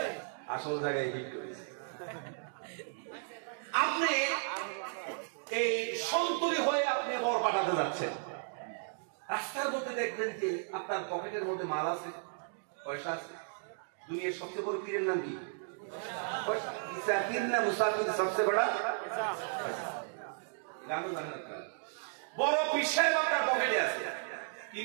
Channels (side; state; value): left; silent; digital silence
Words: আসল জায়গায় হিট করেছে। আপনি এই সন্তুলি হয়ে আপনি বর পাঠাতে যাচ্ছেন, রাস্তার মধ্যে দেখবেন যে আপনার পকেটের মধ্যে মাল আছে, পয়সা আছে। দুনিয়ার সবচেয়ে বড় পীরের নাম কি? সবচেয়ে বড় বড় পীর সাহেব আপনার পকেটে আছে।